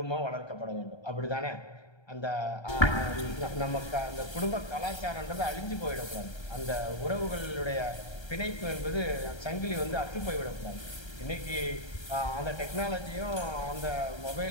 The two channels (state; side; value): late; right; 1.3 ms